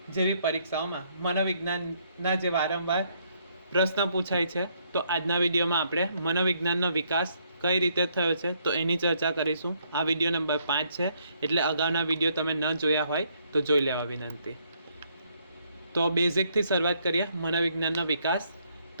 જેવી પરીક્ષાઓમાં મનોવિજ્ઞાનના જે વારંવાર પ્રશ્ન પૂછાય છે, તો આજના વિડીયોમાં આપણે મનોવિજ્ઞાનનો વિકાસ કઈ રીતે થયો છે તો એની ચર્ચા કરીશું. આ વિડીયો નંબર 5 છે, એટલે અગાઉના વિડીયો તમે ન જોયા હોય તો જોઈ લેવા વિનંતી. તો બેઝિકથી શરૂઆત કરીએ. મનોવિજ્ઞાનનો વિકાસ.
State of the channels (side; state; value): both; inverted; correlation -0.70